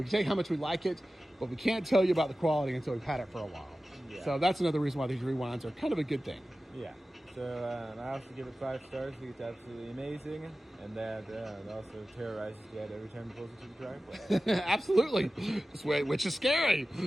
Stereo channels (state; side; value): normal; both; correlation 0.95